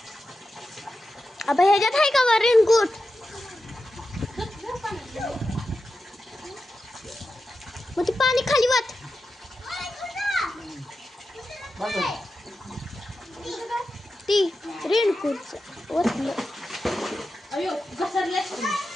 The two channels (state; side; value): normal; both; correlation 0.91